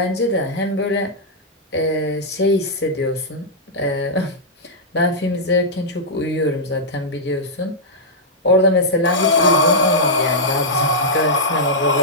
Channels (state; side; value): normal; both; correlation -0.08